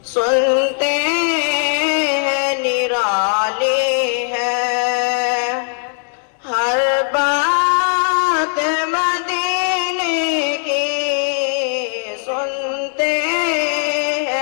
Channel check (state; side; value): silent; right; digital silence